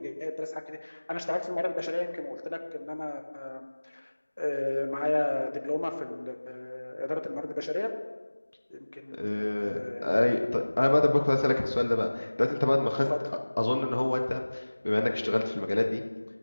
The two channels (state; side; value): inverted; both; correlation -1.00